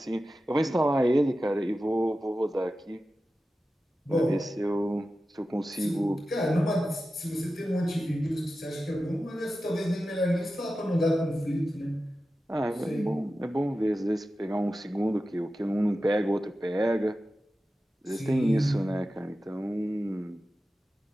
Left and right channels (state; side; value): normal; both; correlation 0.93